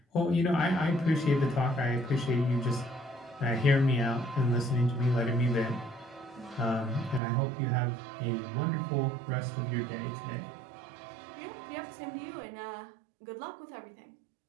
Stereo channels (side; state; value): left; drops out; at 7.2 s